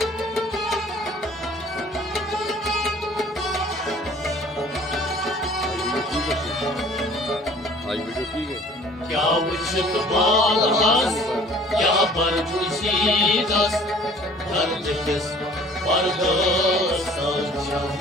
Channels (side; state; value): both; normal; correlation 0.51